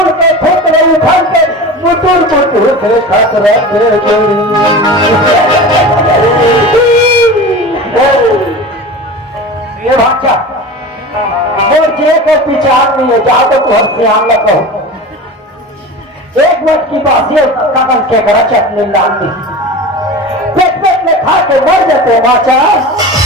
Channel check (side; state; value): both; normal; correlation 0.32